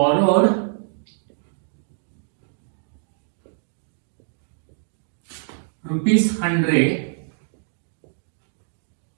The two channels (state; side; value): silent; left; digital silence